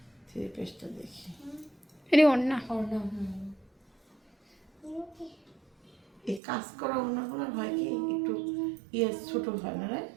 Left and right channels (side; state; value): left; drops out; at 6.4 s